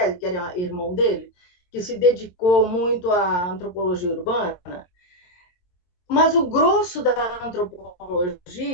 que era irmão dele, que se dedicou muito à antropologia urbana, mas o grosso da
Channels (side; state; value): right; late; 22 ms